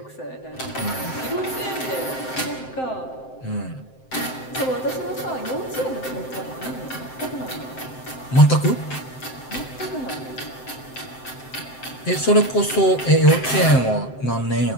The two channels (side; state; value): right; late; 7.7 ms